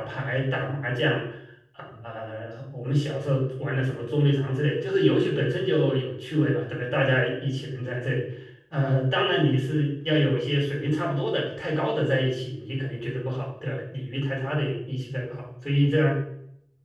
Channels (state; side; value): identical; both; correlation 1.00